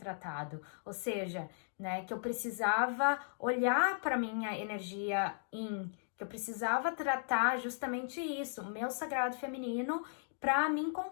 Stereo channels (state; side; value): silent; right; digital silence